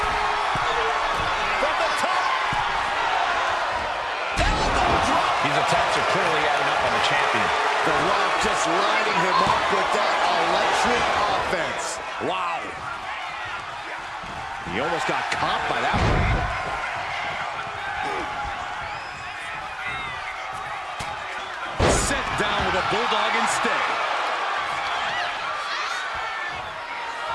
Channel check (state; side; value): identical; both; correlation 1.00